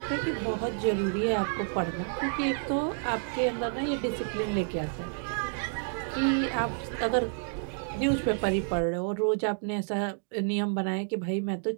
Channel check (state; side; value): silent; left; 58 dB below the other